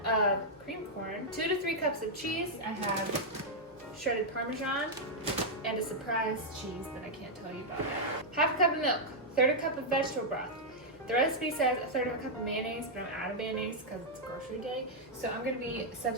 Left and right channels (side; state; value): both; normal; correlation -0.04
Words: of cream corn, 2 to 3 cups of cheese. I have shredded Parmesan and a surprise cheese that I can't tell you about yet. 1/2 cup of milk, 1/3 cup of vegetable broth. The recipe says 1/3 cup of mayonnaise, but I'm out of mayonnaise because it's grocery day, so I'm going to be